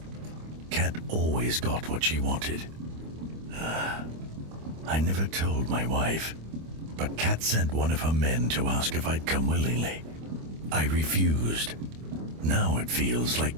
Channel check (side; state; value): left; late; 25 ms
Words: always got what she wanted. I never told my wife, but Kat sent one of her men to ask if I'd come willingly. I refused. Now it feels like